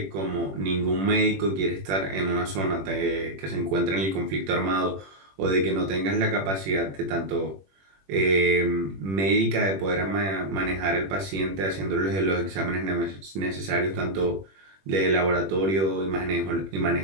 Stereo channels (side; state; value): left; late; 21 ms